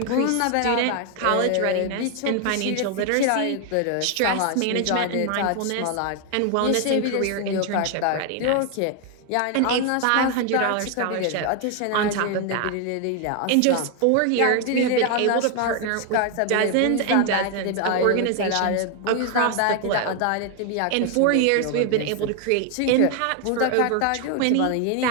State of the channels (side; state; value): both; different; correlation 0.01